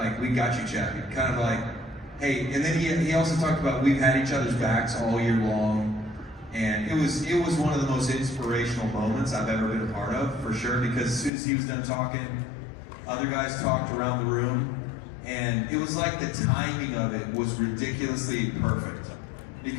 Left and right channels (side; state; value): right; drops out; at 11.3 s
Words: We got you, Chappie. Kind of like, hey. And then he also talked about we've had each other's backs all year long, and it was one of the most inspirational moments I've ever been a part of, for sure. Because as soon as he was done talking, other guys talked around the room. And it was like the timing of it was ridiculously perfect.